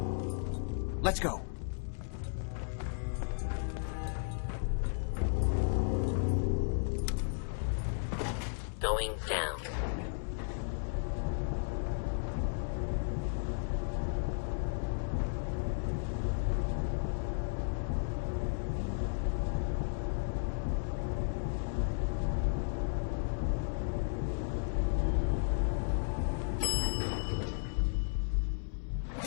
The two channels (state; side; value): silent; right; digital silence